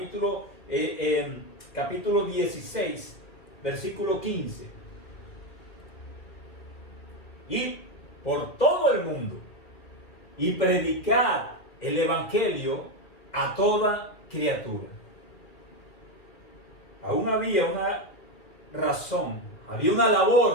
16, versículo 15. Y por todo el mundo y predicar el Evangelio a toda criatura. Aún había una razón, había una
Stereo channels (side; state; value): right; late; 2.4 ms